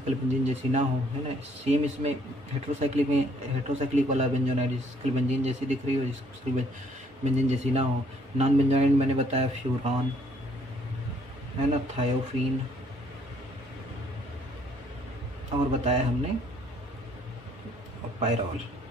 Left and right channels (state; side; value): normal; both; correlation 0.64